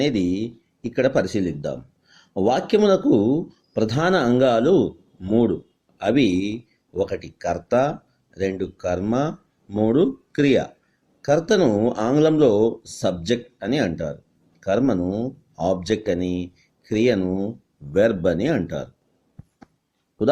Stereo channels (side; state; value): both; identical; correlation 1.00